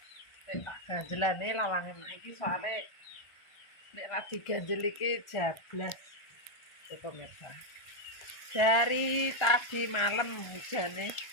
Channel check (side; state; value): right; late; 1.4 ms